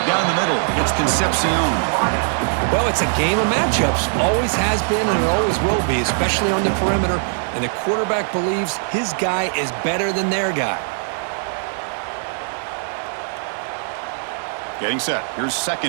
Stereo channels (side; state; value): left; silent; digital silence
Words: down the middle. It's Concepcion. Well, it's a game of matchups. Always has been and it always will be, especially on the perimeter. And the quarterback believes his guy is better than their guy. Getting set. Here's